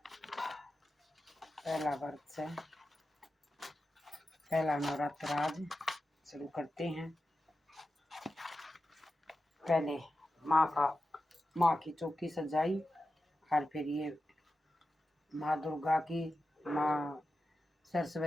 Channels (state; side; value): normal; both; correlation 0.92